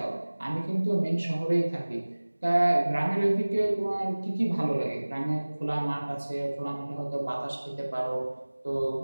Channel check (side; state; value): both; inverted; correlation -1.00